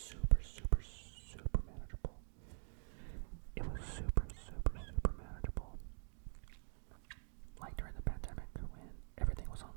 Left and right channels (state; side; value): silent; left; digital silence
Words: super, super manageable. It was super, super, super manageable. Like during the pandemic when everything was